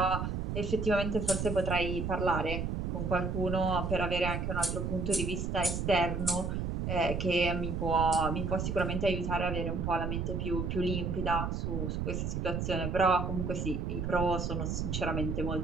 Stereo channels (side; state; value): right; noise; rumble, 2 dB below the sound